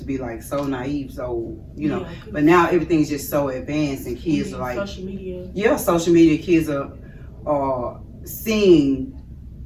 be like so naive, so, but now everything's just so advanced and kids are like, social media. Yeah, social media, kids are seeing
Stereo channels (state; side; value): identical; both; correlation 1.00